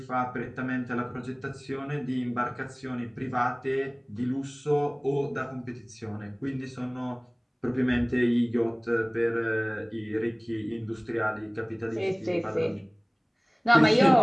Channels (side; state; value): both; identical; correlation 1.00